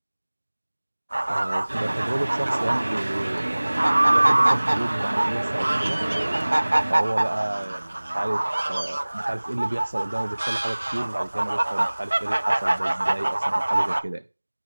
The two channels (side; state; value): both; inverted; correlation -1.00